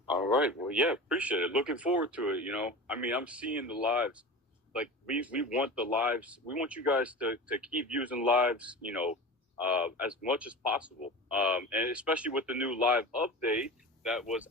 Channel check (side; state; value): both; normal; correlation 0.32